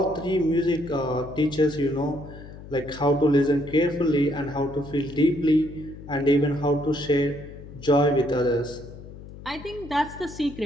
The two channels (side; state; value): left; noise; hum, 15 dB below the sound